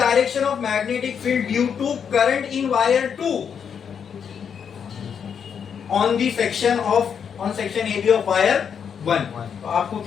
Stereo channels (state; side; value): quieter; right; 7.3 dB